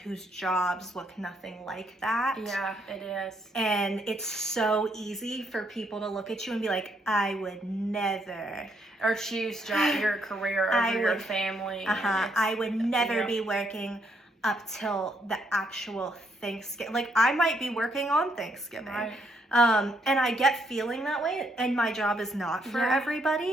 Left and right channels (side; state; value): both; normal; correlation 0.73